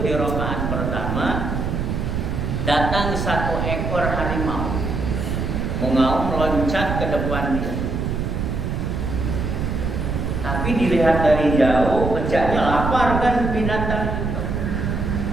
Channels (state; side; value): noise; right; rumble, 2 dB below the sound